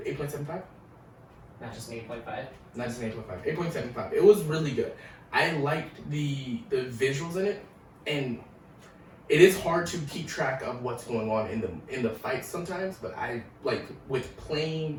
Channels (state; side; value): identical; both; correlation 1.00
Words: 8.75? Not just an 8.5? Not just an 8.5. 8.75. It was really good. I liked the visuals in it, and it is hard to keep track of what's going on in the fights sometimes, but I with playing